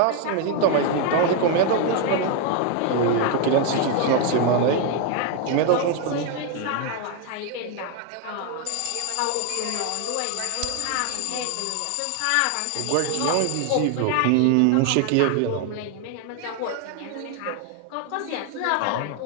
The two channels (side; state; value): both; different; correlation 0.01